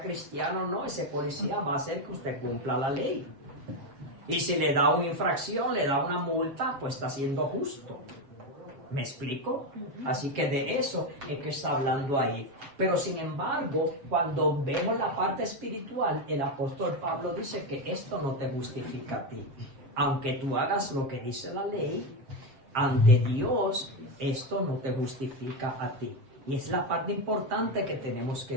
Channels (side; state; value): left; late; 7.4 ms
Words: o no, ese policía va a hacer que usted cumpla la ley. Y si le da una infracción, le da una multa, pues está siendo justo. ¿Me explico? Así que de eso es que está hablando ahí. Pero sin embargo, cuando vemos la parte espiritual, el apóstol Pablo dice que esto no te justifica a ti. Aunque tú hagas lo que dice la ley, ante Dios, esto no te justifica a ti. Y es la parte importante que tenemos